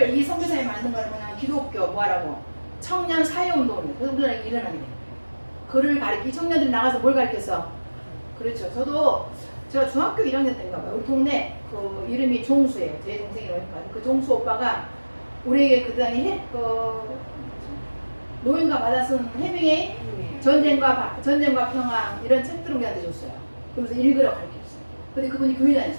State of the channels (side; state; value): both; inverted; correlation -1.00